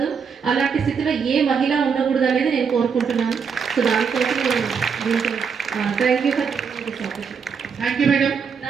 అలాంటి స్థితిలో ఏ మహిళ ఉండకూడదు అనేది నేను కోరుకుంటున్నాను. సో దానికోసం నేను దీంతో thank you for this opportunity. Thank you madam.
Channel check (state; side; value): quieter; left; 6.2 dB